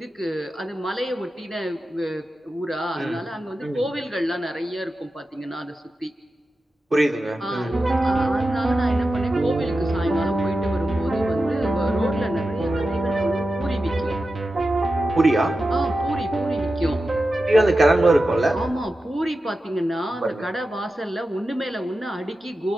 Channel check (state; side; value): normal; both; correlation 0.92